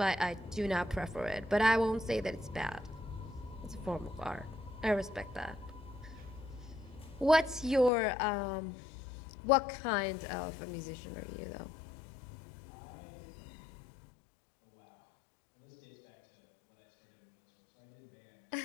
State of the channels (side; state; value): right; drops out; at 7.9 s